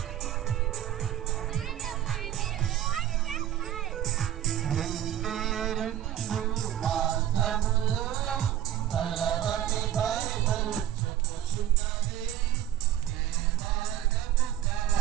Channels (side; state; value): left; quieter; 11.7 dB